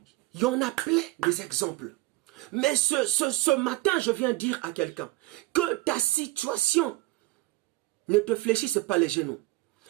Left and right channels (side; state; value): left; quieter; 19.7 dB